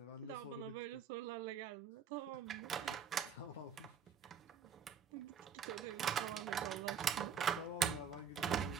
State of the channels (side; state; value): left; quieter; 7.4 dB